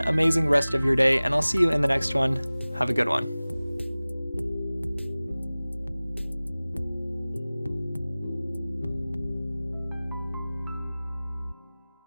rest of your day, and I'll see you in the next one. Have a good one.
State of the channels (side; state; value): both; inverted; correlation -0.98